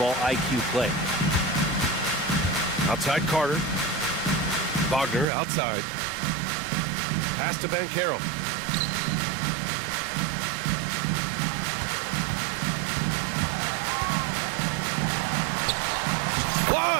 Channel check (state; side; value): drops out; left; at 5.2 s